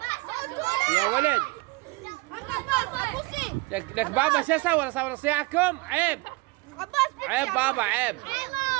يا ولد. لك بابا شو اسوي؟ اصور صياحكم؟ عيب عيب بابا عيب.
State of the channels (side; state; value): left; quieter; 23.9 dB